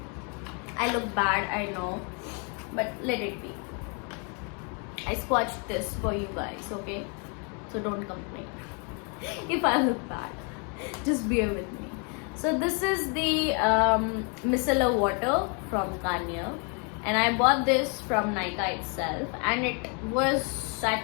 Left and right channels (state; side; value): quieter; right; 36.4 dB